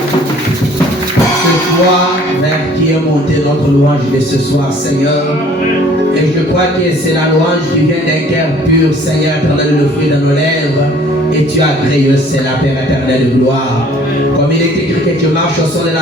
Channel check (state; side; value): normal; both; correlation 0.55